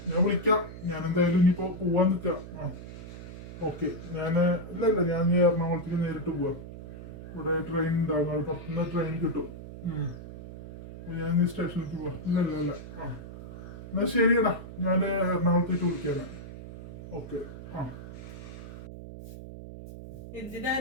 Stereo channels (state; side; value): noise; right; hum, 12 dB below the sound